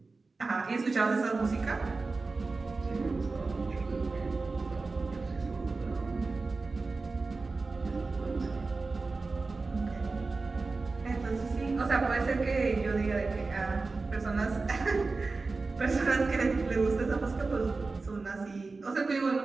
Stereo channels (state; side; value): quieter; left; 3.9 dB